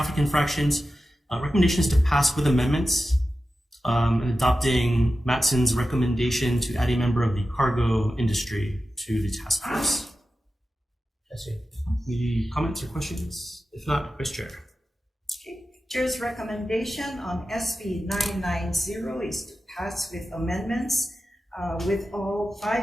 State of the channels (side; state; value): both; normal; correlation 0.93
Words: infractions. Recommendations to pass with amendments, and adopting Matson's recommendation to add a member of the cargo industry to the task force. Any comments or questions? If not, Vice Chair. Okay. Chair's recommendation on SB 990 is to pass with amendments with all